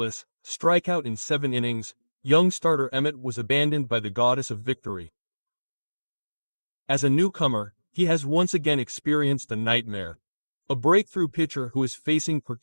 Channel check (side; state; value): both; inverted; correlation -1.00